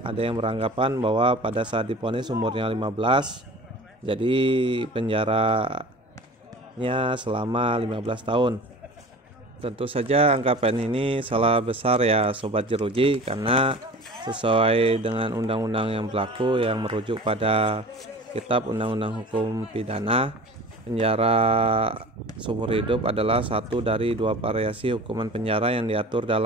ada yang beranggapan bahwa pada saat diponis umurnya 15, jadi penjaranya selama 15 tahun. Tentu saja anggapan ini salah besar ya Sobat Jeruji, karena sesuai dengan undang-undang yang berlaku yang merujuk pada Kitab Undang-Undang Hukum Pidana, penjara seumur hidup adalah satu dari dua variasi hukuman penjara yang diatur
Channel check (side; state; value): both; normal; correlation 0.39